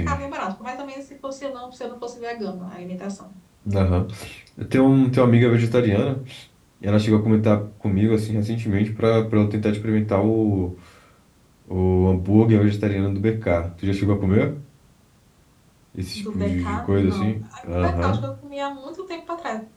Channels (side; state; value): both; identical; correlation 1.00